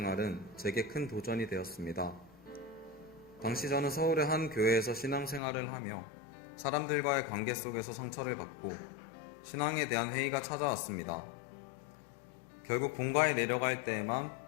제게 큰 도전이 되었습니다. 당시 저는 서울의 한 교회에서 신앙생활을 하며 사람들과의 관계 속에서 상처를 받고 신앙에 대한 회의가 찾아왔습니다. 결국 본가에 내려갈 때에만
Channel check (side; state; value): right; drops out; at 5.4 s